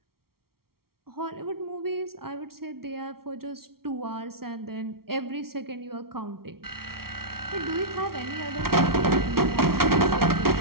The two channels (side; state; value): left; late; 0.94 ms